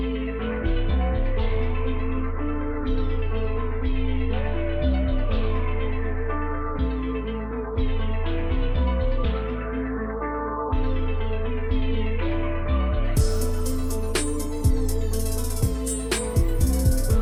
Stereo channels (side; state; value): both; identical; correlation 1.00